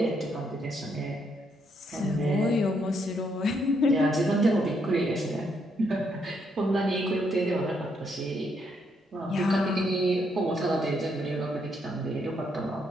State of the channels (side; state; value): both; normal; correlation 0.75